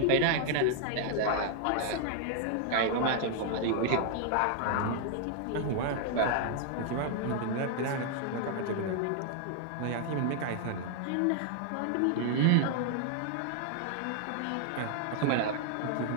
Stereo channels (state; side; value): different; both; correlation 0.00